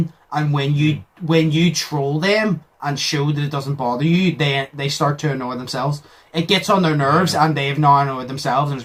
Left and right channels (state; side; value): identical; both; correlation 1.00